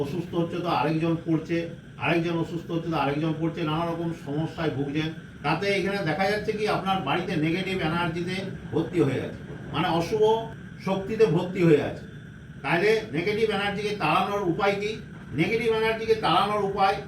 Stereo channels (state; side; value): identical; both; correlation 1.00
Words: অসুস্থ হচ্ছে তো আরেকজন পড়ছে, আরেকজন অসুস্থ হচ্ছে তো আরেকজন পড়ছে, নানা রকম সমস্যায় ভুগছেন। তাতে এখানে দেখা যাচ্ছে কি আপনার বাড়িতে নেগেটিভ এনার্জিতে ভর্তি হয়ে আছে, মানে অশুভ শক্তিতে ভর্তি হয়ে আছে। তাহলে নেগেটিভ এনার্জিকে তাড়ানোর উপায় কি? নেগেটিভ এনার্জিকে তাড়ানোর উপায়,